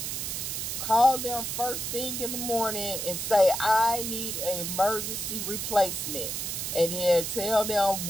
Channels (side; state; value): right; noise; hiss, 3 dB below the sound